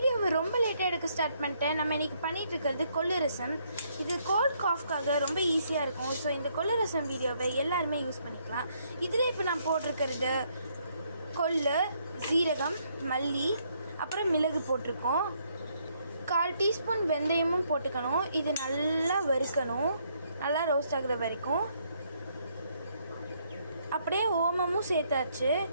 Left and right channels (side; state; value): both; inverted; correlation -0.71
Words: ரொம்ப லேட்டாக எடுக்க ஸ்டார்ட் பண்ணிட்டேன். நம்ம இன்றைக்கி பண்ணிகிட்டு இருக்கிறது கொள்ளு ரசம். இது கோல்ட் காஃப்காக ரொம்ப ஈஸியாக இருக்கும். ஸோ இந்த கொள்ளு ரசம் வீடியோவை எல்லாருமே யூஸ் பண்ணிக்கலாம். இதில் இப்போ நான் போட்டிருக்கிறது கொள்ளு, சீரகம், மல்லி, அப்புறம் மிளகு போட்டிருக்கோம். 1/4 டீஸ்பூன் வெந்தயமும் போட்டுக்கணும். இது நல்லா வறுக்கணும், நல்லா ரோஸ்ட் ஆகுற வரைக்கும். அப்படியே ஓமமும் சேர்த்தாச்சு.